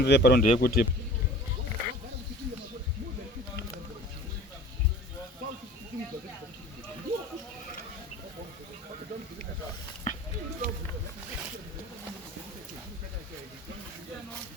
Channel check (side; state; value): both; normal; correlation 0.43